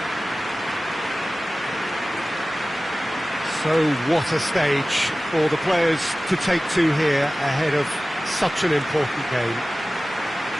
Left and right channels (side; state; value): both; normal; correlation 0.97